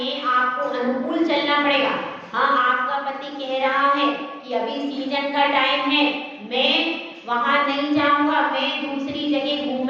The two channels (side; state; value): both; identical; correlation 1.00